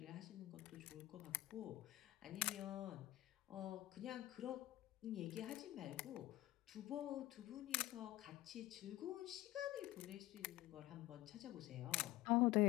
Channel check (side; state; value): right; quieter; 16.6 dB